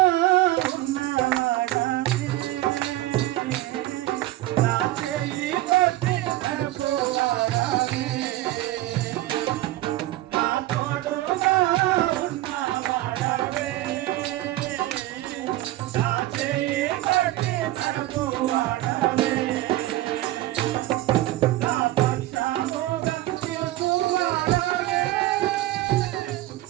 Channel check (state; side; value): quieter; left; 16.1 dB